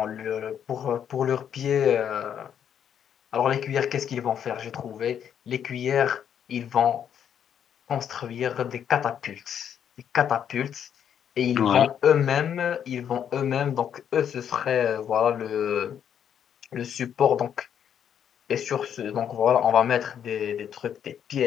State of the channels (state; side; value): quieter; right; 8.8 dB